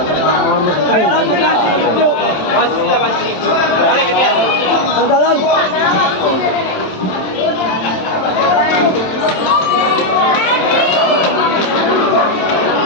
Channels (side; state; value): right; late; 27 ms